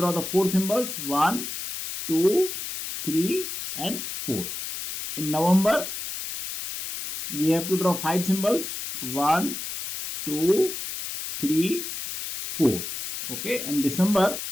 the four symbols, 1, 2, 3 and 4. In November, we have to draw 5 symbols. 1, 2, 3, 4. Okay, and December,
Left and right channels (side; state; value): left; noise; hiss, 6 dB below the sound